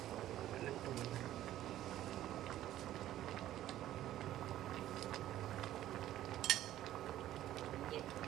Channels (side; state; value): left; quieter; 13.2 dB